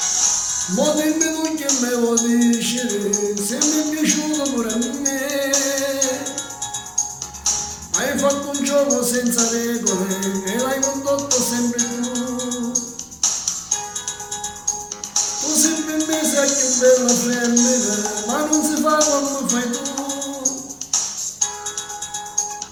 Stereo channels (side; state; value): both; identical; correlation 1.00